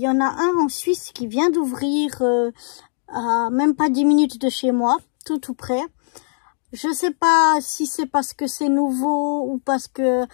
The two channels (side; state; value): right; silent; digital silence